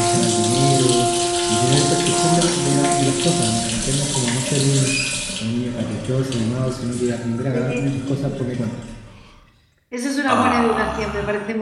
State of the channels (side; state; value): both; identical; correlation 1.00